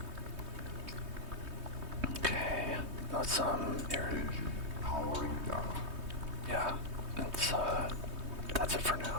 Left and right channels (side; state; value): left; late; 3.2 ms